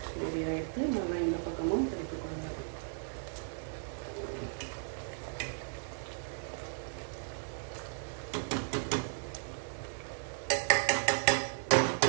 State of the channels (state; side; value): silent; left; digital silence